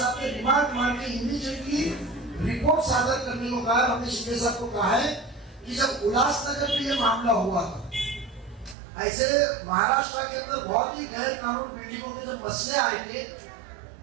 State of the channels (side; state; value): left; drops out; at 8.8 s